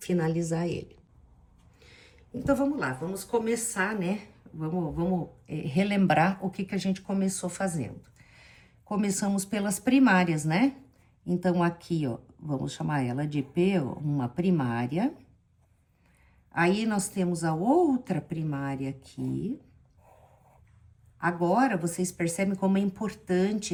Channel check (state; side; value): identical; both; correlation 1.00